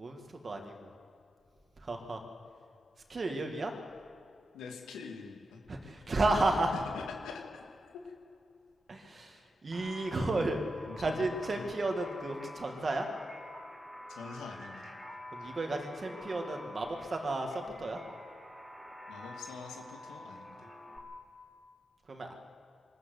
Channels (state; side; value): normal; both; correlation 0.89